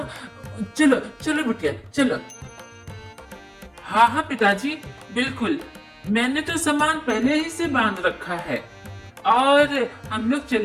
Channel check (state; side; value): identical; both; correlation 1.00